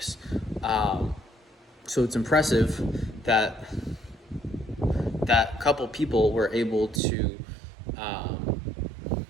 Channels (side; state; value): left; drops out; at 7.0 s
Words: So it's impressive that that couple people were able to